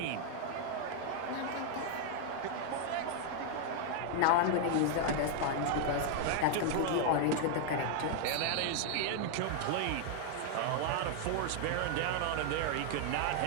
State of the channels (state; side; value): different; both; correlation 0.00